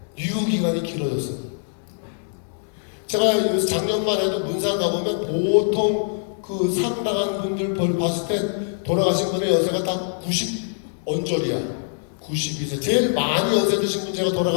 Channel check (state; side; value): silent; right; digital silence